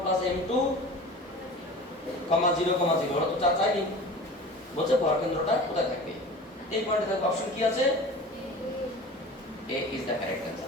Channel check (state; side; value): normal; both; correlation 0.38